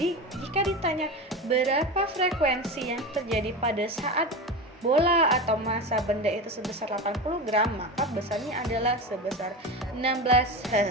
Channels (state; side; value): normal; both; correlation 0.24